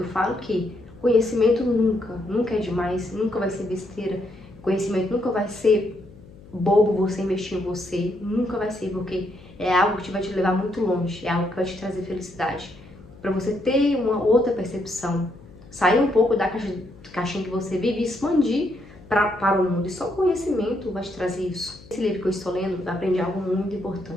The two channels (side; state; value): left; noise; hum, 21 dB below the sound